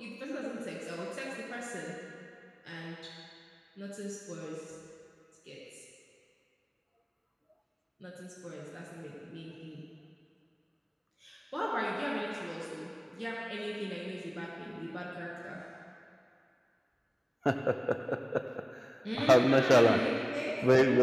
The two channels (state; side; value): identical; both; correlation 1.00